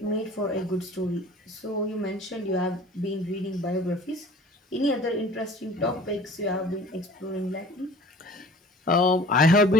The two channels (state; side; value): normal; both; correlation 0.46